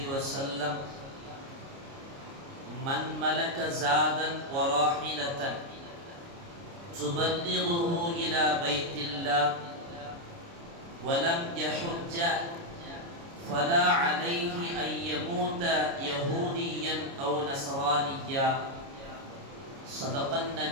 وسلم: من ملك زادا وراحلة تبلغه إلى بيت الله ولم يحج فلا عليه أن يموت يهوديا أو نصرانيا. صدق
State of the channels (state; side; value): late; left; 29 ms